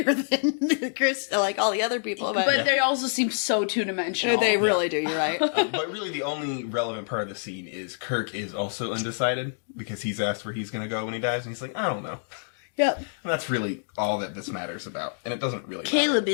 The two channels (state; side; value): silent; right; digital silence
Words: than Chris, like all the other people. But they also seem so two-dimensional. They really do, you're right. But really the only relevant part of the scene is Kirk is also undecided because he's asked where he's going to go when he dies and he's like, I don't know. Yep. And that's really all that this matters about. And it doesn't really matter. Caleb